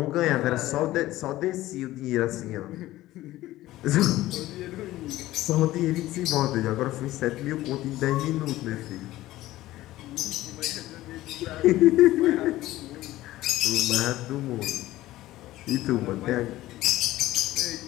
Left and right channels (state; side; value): quieter; right; 16.1 dB